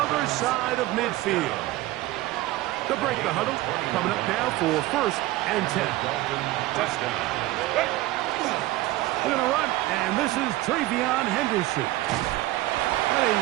side of midfield. To break the huddle, coming up now for 1st and 10. They're going to run, and this is Travion Henderson. Heading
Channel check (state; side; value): quieter; left; 17.3 dB